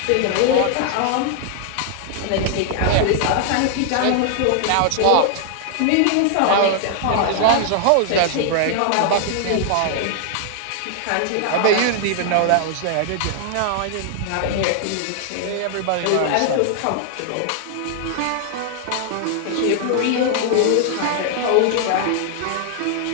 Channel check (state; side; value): different; both; correlation 0.00